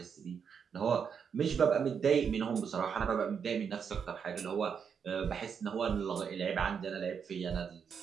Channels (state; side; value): quieter; left; 6.9 dB